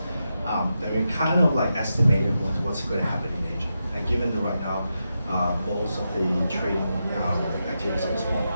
Then we kind of like estimated what's going to happen in Asia. And given that right now, most of the trading activities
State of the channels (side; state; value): both; inverted; correlation -0.87